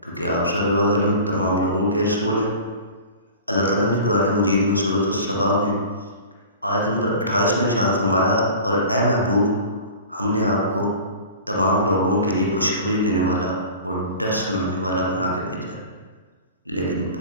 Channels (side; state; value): both; inverted; correlation -0.39